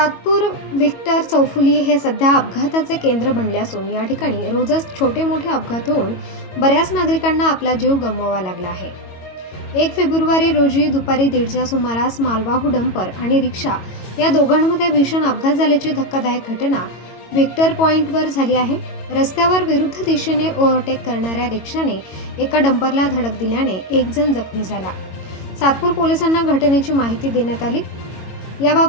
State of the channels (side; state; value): right; late; 22 ms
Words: Victor चौफुली हे सध्या अपघाताचे केंद्र बनले असून या ठिकाणी रोजच छोटे मोठे अपघात होऊन बऱ्याच नागरिकांना आपला जीव गमवावा लागला आहे। 1 फेब्रुवारी रोजी दुपारी 1:30च्या सुमारास मालवाहू डंपर आणि रिक्षा या दोघांमध्ये भीषण अपघात झाल्याची धक्कादायक घटना व्हिक्टर पॉइंटवर झाली आहे। रस्त्यावर विरुद्ध दिशेने ओव्हरटेक करणाऱ्या रिक्षाने एका डंपरला धडक दिल्याने एक जण जखमी झाला। सातपूर पोलिसांना घटनेची माहिती देण्यात आली।